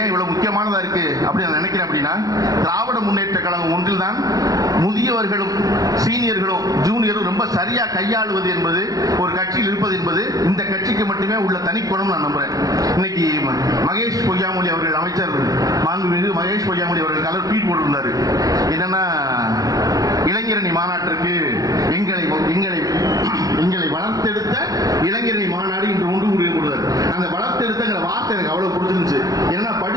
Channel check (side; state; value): left; late; 0.18 ms